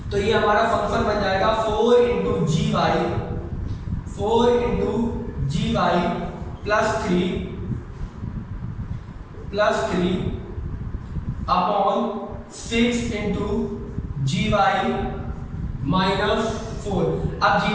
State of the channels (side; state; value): both; identical; correlation 1.00